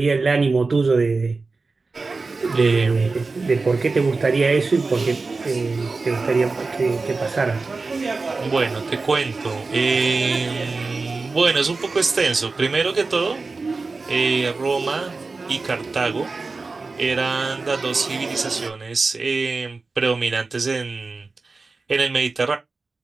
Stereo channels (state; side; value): quieter; left; 3.9 dB